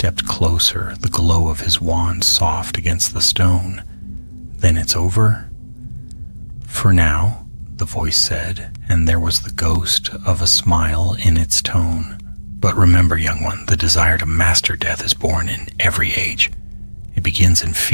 closer, the glow of his wand soft against the stone. "Then it's over?" "For now," the voice said, and there was the ghost of a smile in its tone. "But remember, young one, the desire to master death is born in every age. It begins in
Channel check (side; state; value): both; inverted; correlation -1.00